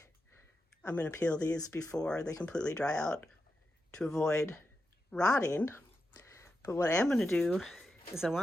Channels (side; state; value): both; normal; correlation 0.88